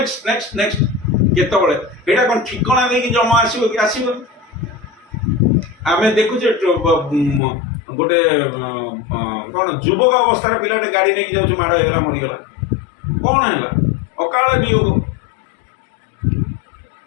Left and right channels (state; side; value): drops out; right; at 7.4 s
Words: नेक्स्ट नेक्स्ट केतबले एटा कोन ठिकाना देकी जमा आसीबो कि आसीबो आमे देखुचे गोटे कौन युवक अवस्था पिलाटे गाड़ी नहीं जाऊँ माड़ होगा मरीगला कौन है अकाल वियोग